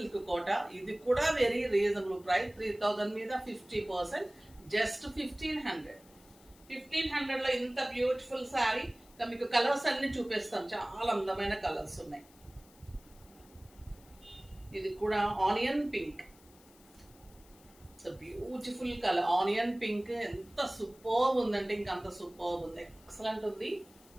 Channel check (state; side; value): noise; left; hiss, 26 dB below the sound